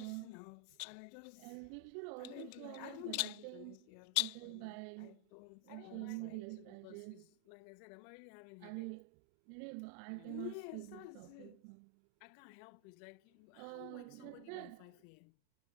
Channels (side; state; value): both; different; correlation 0.00